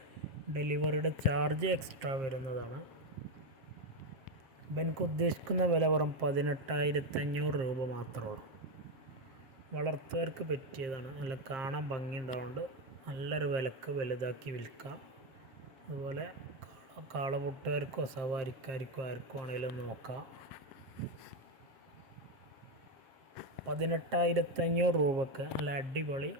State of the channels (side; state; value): left; late; 7.5 ms